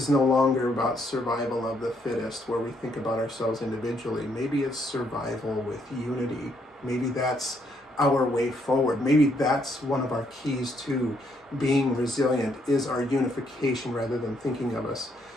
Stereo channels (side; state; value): both; normal; correlation 0.72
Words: no longer about survival of the fittest, where we think about ourselves individually. Maybe it's survival with unity. Maybe that's our way forward. Maybe that's one of our keys to being resilient, is our unification rather than thinking of us